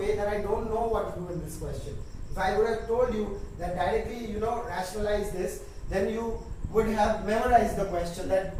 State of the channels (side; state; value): both; identical; correlation 1.00